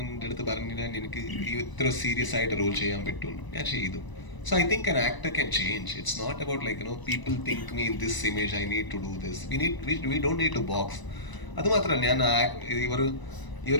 അടുത്ത് പറഞ്ഞില്ല എനിക്ക് ഇത്ര സീരിയസ് ആയിട്ട് റോൾ ചെയ്യാൻ പറ്റും. ഞാൻ ചെയ്തു. So I think an actor can change. It's not about like people think me in this image, I need to do this. We don't need to box. അത് മാത്രമല്ല, ഞാൻ ഈ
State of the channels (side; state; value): right; late; 1.0 ms